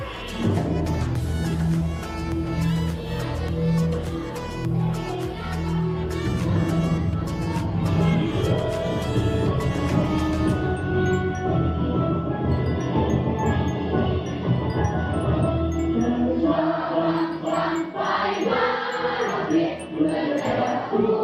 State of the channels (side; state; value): both; identical; correlation 1.00